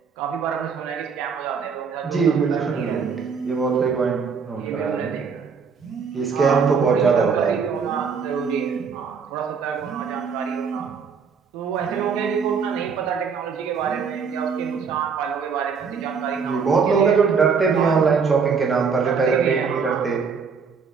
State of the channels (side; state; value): left; quieter; 5.8 dB